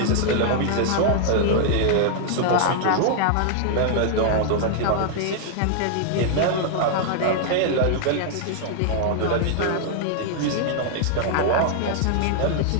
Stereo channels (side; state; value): both; different; correlation -0.01